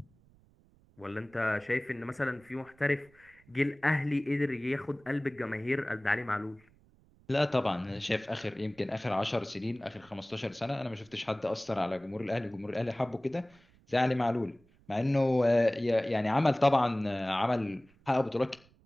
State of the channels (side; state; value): right; noise; rumble, 30 dB below the sound